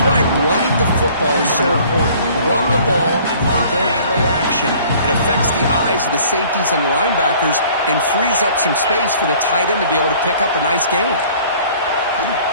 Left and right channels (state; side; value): inverted; both; correlation -0.53